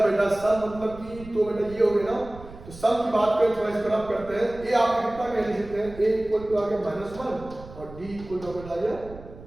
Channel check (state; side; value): noise; right; rumble, 17 dB below the sound